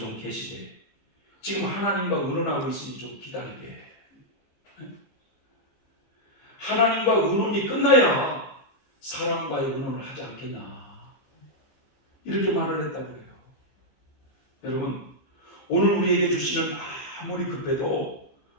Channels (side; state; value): right; late; 14 ms